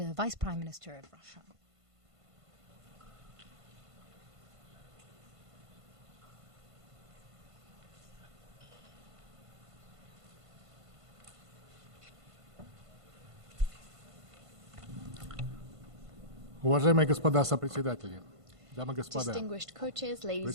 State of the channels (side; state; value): left; late; 1.5 ms